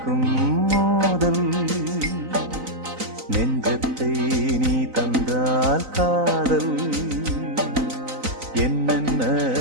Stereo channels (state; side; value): late; left; 3.9 ms